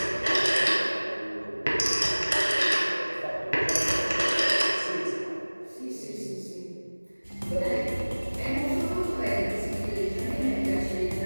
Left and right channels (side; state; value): both; inverted; correlation -1.00